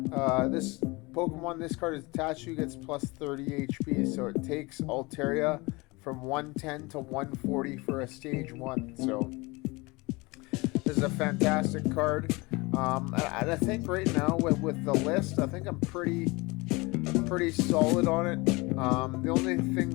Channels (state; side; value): quieter; right; 24.6 dB